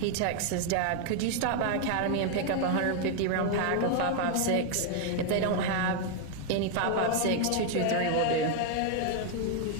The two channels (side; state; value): both; different; correlation 0.00